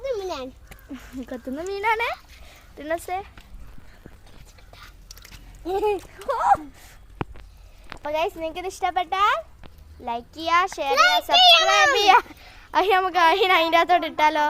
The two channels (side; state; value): both; identical; correlation 1.00